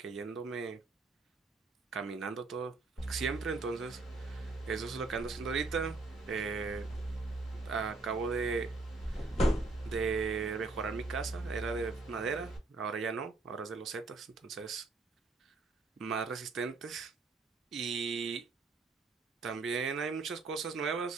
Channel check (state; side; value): quieter; left; 3.6 dB